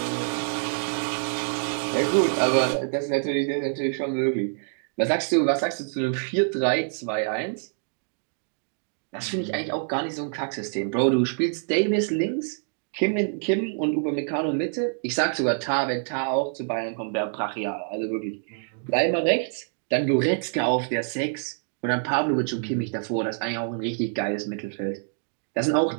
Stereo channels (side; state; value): left; silent; digital silence